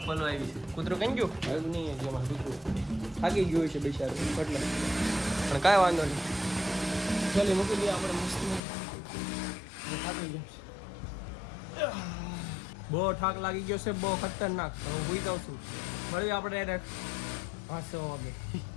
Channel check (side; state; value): right; drops out; at 8.6 s